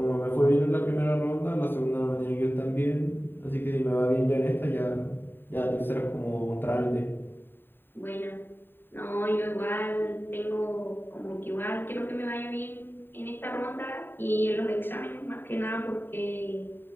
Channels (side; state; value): right; late; 0.097 ms